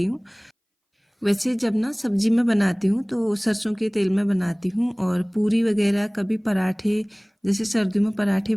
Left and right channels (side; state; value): both; identical; correlation 1.00